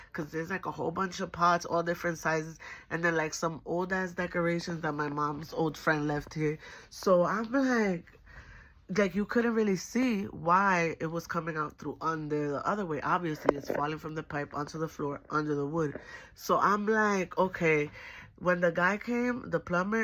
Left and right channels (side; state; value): both; identical; correlation 1.00